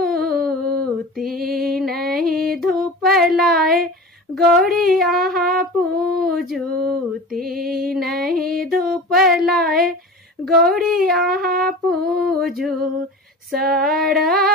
तीन ही धूप लाए गौरी आहाँ पूजो। तीन ही धूप लाए गौरी आहाँ पूजो।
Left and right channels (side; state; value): both; normal; correlation 0.34